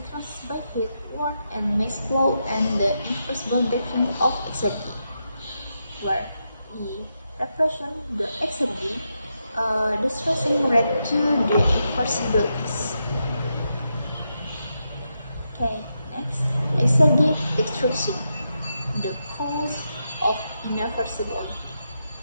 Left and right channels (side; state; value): both; inverted; correlation -0.85